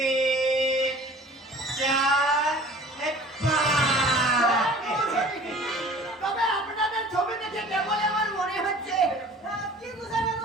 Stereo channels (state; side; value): normal; both; correlation 0.46